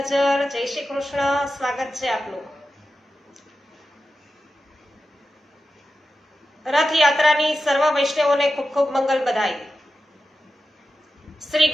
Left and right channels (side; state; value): both; normal; correlation 0.91